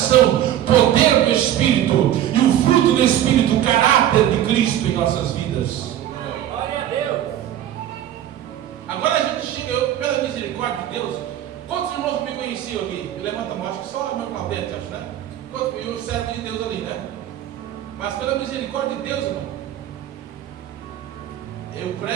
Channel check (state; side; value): quieter; left; 11.7 dB